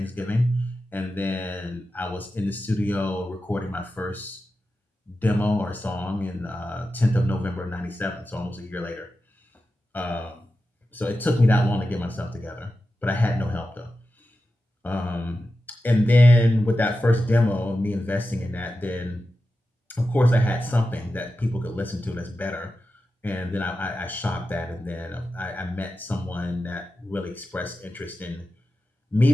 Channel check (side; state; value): both; normal; correlation 0.92